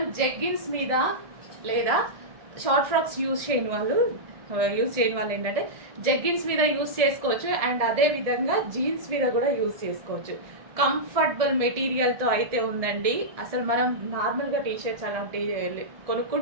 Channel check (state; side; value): late; left; 1.7 ms